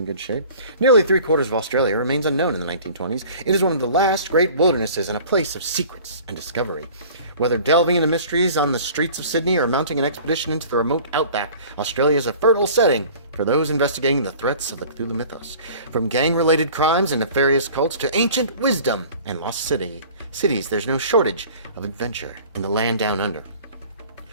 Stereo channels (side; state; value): both; inverted; correlation -0.46